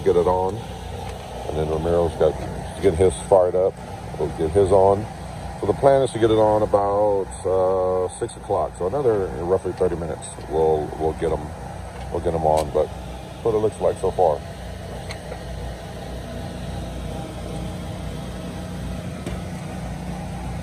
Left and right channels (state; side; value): identical; both; correlation 1.00